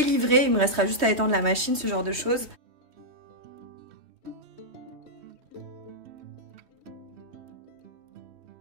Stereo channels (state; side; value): late; left; 3.2 ms